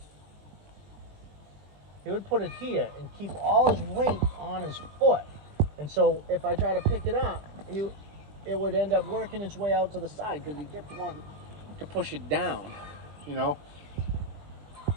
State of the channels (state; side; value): late; left; 20 ms